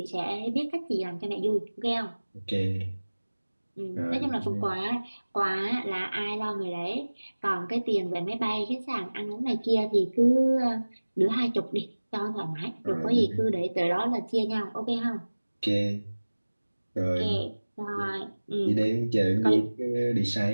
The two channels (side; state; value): both; inverted; correlation -1.00